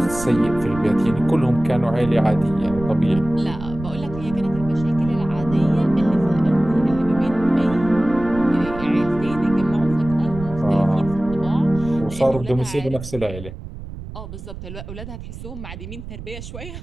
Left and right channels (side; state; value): right; noise; rumble, 12 dB below the sound